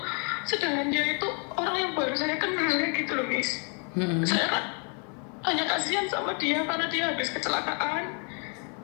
dia itu orang yang baru saya kenal gitu loh, Miss. Saya kan hanya kasihan sama dia karena dia habis kecelakaan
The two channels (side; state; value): right; quieter; 38.9 dB